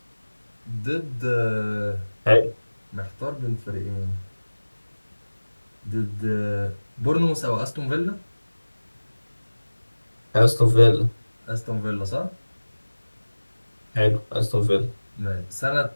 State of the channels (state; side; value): inverted; both; correlation -1.00